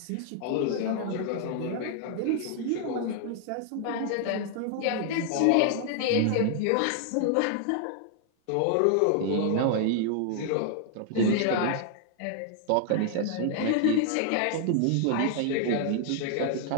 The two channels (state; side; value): different; both; correlation 0.00